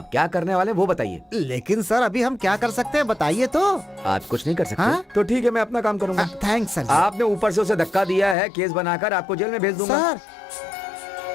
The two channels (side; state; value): right; drops out; at 8.3 s